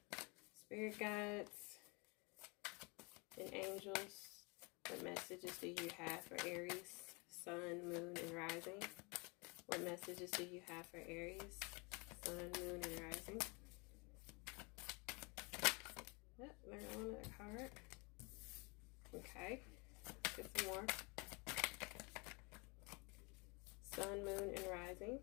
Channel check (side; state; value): right; quieter; 29.7 dB